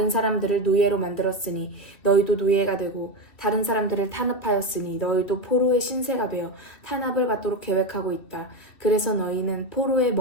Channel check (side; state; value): right; late; 2.7 ms